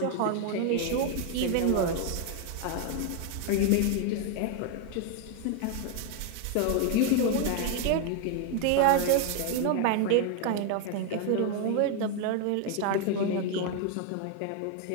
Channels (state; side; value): different; both; correlation 0.01